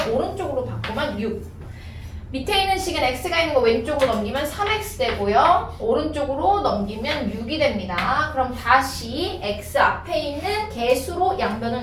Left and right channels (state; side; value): identical; both; correlation 1.00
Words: 오른쪽으로 바꾸면 6. 밑에 있는 식은 x가 있는 거 왼쪽으로 넘기면 3x 되고요. 오른쪽으로 넘기면 6이 됩니다. 그럼 다시 x 앞에 있는 개수로 양변을